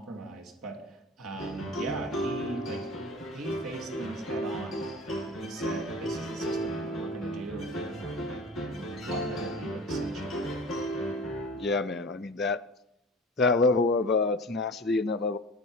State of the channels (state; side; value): normal; both; correlation 0.37